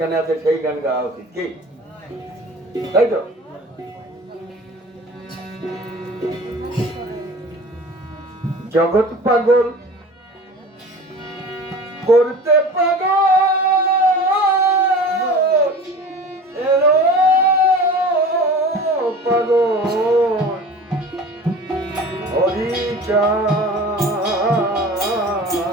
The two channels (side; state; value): both; normal; correlation 0.39